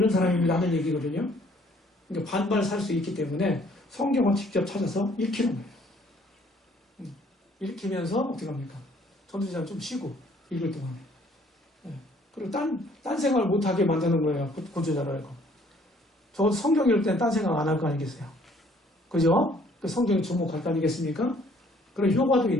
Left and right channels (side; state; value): both; normal; correlation 0.61